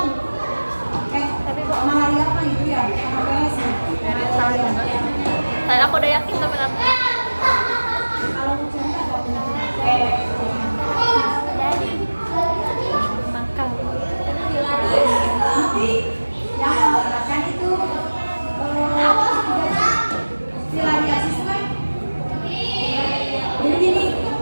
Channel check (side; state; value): both; inverted; correlation -1.00